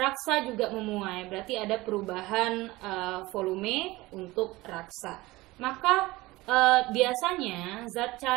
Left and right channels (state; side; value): quieter; left; 20.2 dB